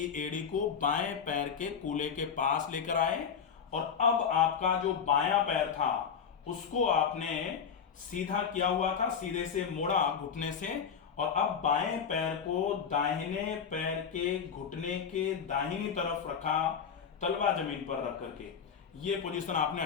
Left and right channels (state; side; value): quieter; right; 6.9 dB